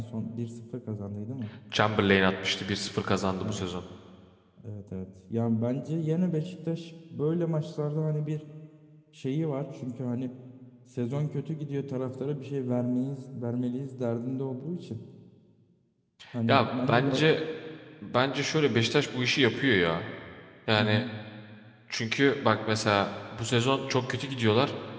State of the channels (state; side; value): identical; both; correlation 1.00